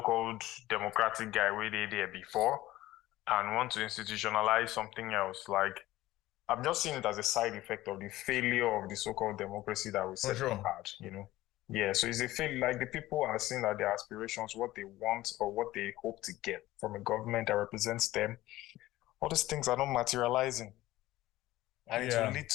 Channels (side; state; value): right; quieter; 16.5 dB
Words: democratic guy where they there before and want to institutionalize something else, like I'm just seeing it as a side effect of the failure of the so-called democracy that we for said we sure. had. Yeah, so it's a fail. Like the people are seeing that their aspirations, what they want or what they hope to get from a government that represents them, all these things are not materializing. And it will Yeah, lead